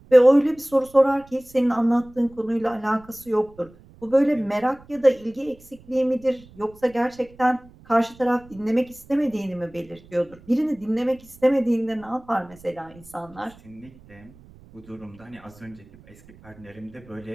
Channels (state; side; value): noise; right; rumble, 24 dB below the sound